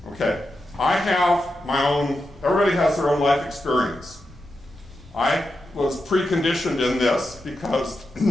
Okay. I have my own, everybody has their own life experience. I was preconditioned in this because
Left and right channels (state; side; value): normal; both; correlation 0.88